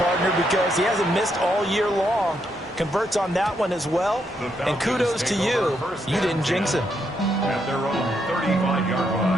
because he hasn't missed all year long. Converts on that one as well. And kudos to you. You didn't jinx him. At their own 35-yard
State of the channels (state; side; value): normal; both; correlation 0.78